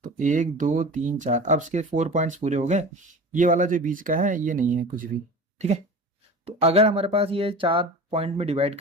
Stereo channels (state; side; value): normal; both; correlation 0.35